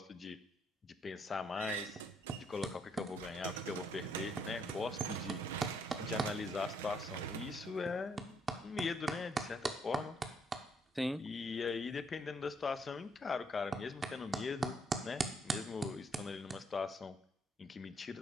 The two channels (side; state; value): both; normal; correlation 0.71